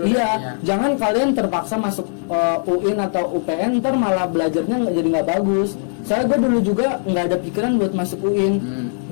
Iya, deh, ya. jangan kalian terpaksa masuk UIN atau UPN, ntar malah belajarnya jadi nggak bagus. Saya gue dulu juga nggak ada pikiran buat masuk UIN.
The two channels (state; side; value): silent; right; 64 dB below the other